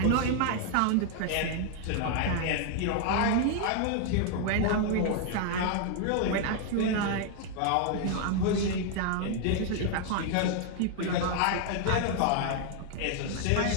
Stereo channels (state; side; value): different; both; correlation 0.00